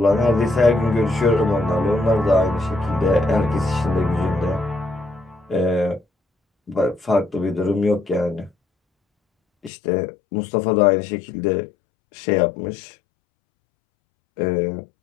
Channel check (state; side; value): drops out; right; at 9.7 s